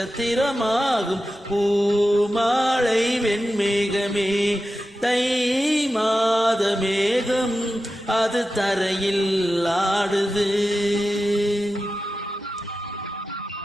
பூமாலை வெண்மேகமே தை மாத மேகம் அது தரையில் ஆடுது.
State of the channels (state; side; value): normal; both; correlation 0.92